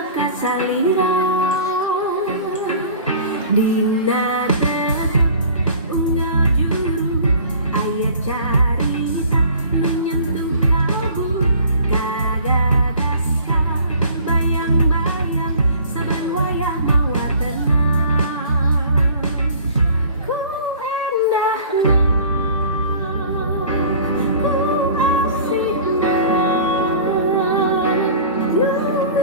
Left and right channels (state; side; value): inverted; both; correlation -0.47